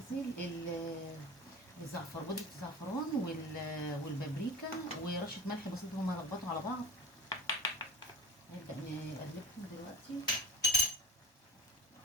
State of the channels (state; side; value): normal; both; correlation 0.36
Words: الزعفر، بودره الزعفران والبابريكا ورشه ملح بسيطه، هما يربطوا على بعض. نبدا نقلبهم دلوقتي